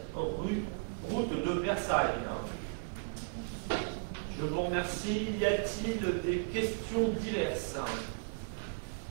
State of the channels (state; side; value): silent; left; 54 dB below the other